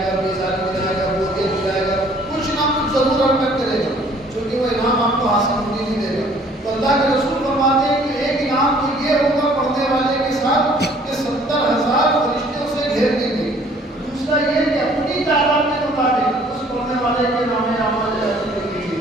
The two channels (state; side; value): normal; both; correlation 0.57